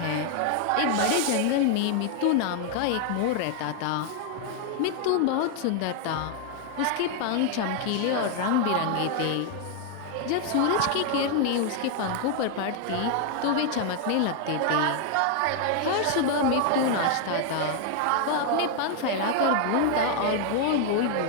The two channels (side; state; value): both; different; correlation 0.00